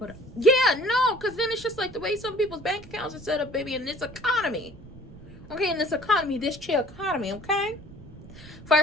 yeah, no, because then it's just like the way some people's bank accounts are set up, baby, in this economy. Okay, in this economy, this chill economy, okay?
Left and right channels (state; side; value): noise; right; rumble, 18 dB below the sound